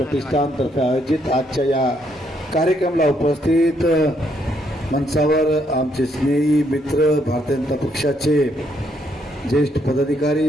आयोजित आजच्या या कार्यक्रमाला उपस्थित मंचावर आमचे स्नेही मित्र भारतीय जनता पक्षाचे ज्येष्ठ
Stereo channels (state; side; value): normal; both; correlation 0.73